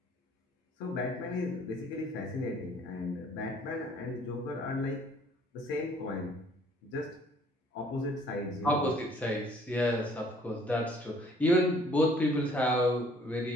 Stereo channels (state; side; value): normal; both; correlation 0.59